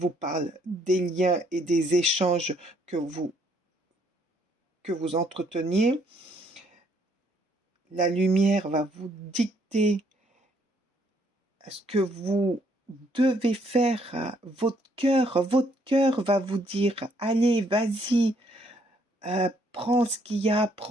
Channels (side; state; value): both; normal; correlation 0.68